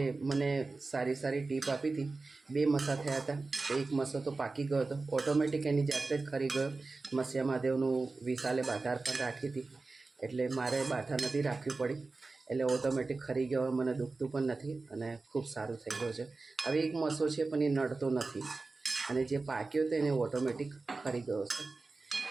મને સારી ટીપ આપી હતી, 2 મસા થયા હતા. 1 મસો તો પાકી ગયો હતો, ઓટોમેટિક એની જાતે જ ખરી ગયો. મસ્યા મહાદેવનું વિશાલે બાધાર પણ રાખી હતી, એટલે મારે બાધા નથી રાખવી પડી, એટલે ઓટોમેટિક ખરી ગયો. મને દુખતું પણ નથી અને ખૂબ સારું થઈ ગયું છે. હવે 1 મસો છે પણ એ નડતો નથી, અને જે પાક્યો હતો એને ઓટોમેટિક ખરી ગયો છે.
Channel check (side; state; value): left; quieter; 3.7 dB